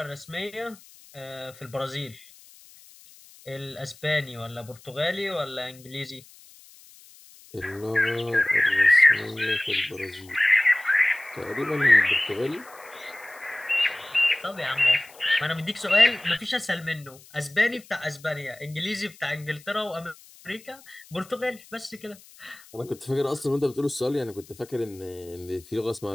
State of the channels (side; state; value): left; noise; hiss, 23 dB below the sound